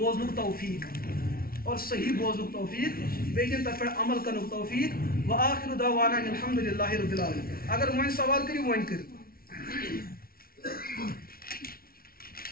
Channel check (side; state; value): right; late; 0.43 ms